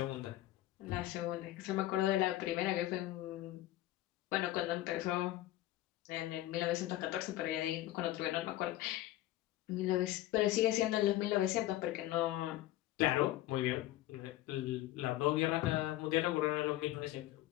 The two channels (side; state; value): right; quieter; 15.4 dB